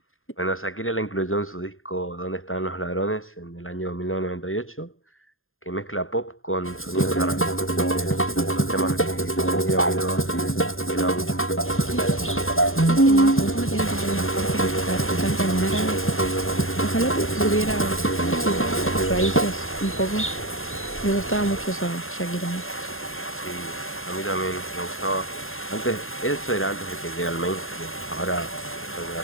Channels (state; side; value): late; right; 0.60 ms